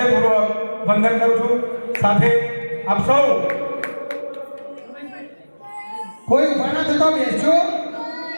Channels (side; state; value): both; inverted; correlation -1.00